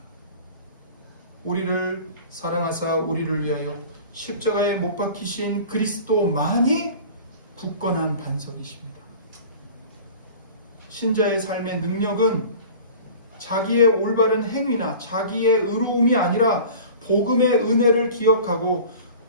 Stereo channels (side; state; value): both; inverted; correlation -0.41